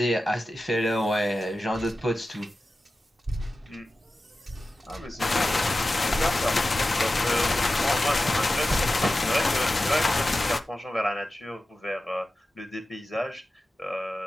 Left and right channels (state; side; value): normal; both; correlation 0.94